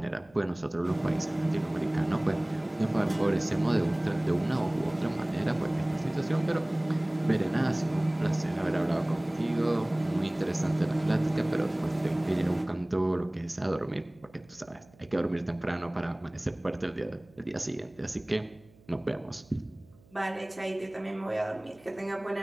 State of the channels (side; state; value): right; noise; hum, 27 dB below the sound